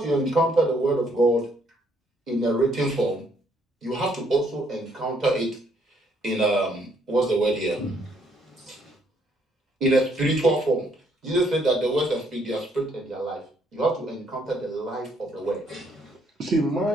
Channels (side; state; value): both; normal; correlation 0.69